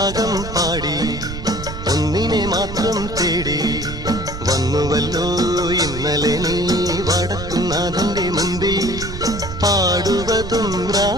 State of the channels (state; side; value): noise; right; rumble, 9 dB below the sound